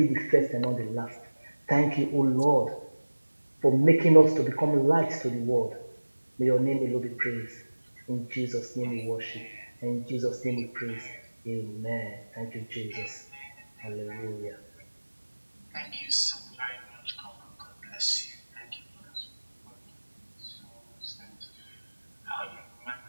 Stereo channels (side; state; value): both; inverted; correlation -1.00